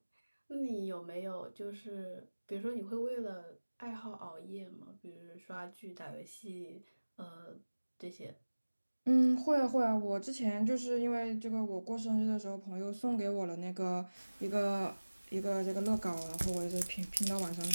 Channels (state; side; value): inverted; both; correlation -1.00